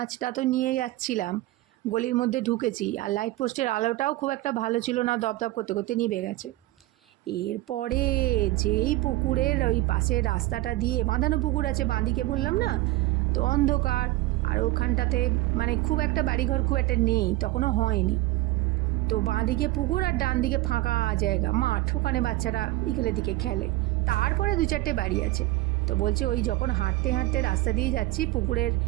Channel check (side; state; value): left; quieter; 18.2 dB